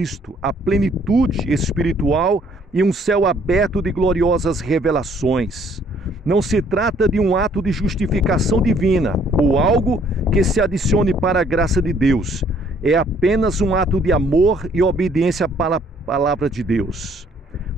a plenitude espiritual e um céu aberto de gloriosas revelações. Não se trata de um ato de justificação divina ou algo que se adicione para a graça de Deus. É apenas um ato de amor e obediência para a palavra de Deus.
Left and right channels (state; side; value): normal; both; correlation 0.62